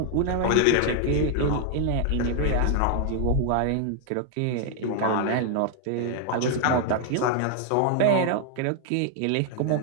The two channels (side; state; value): both; different; correlation 0.00